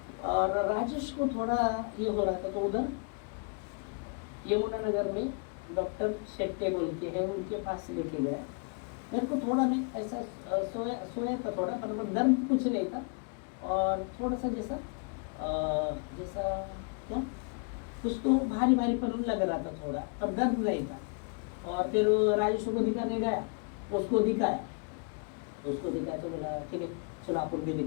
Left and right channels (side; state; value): right; quieter; 37.4 dB